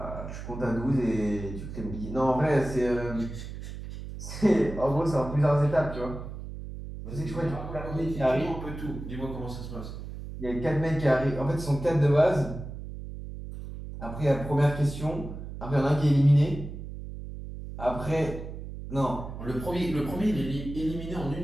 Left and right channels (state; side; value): noise; right; hum, 10 dB below the sound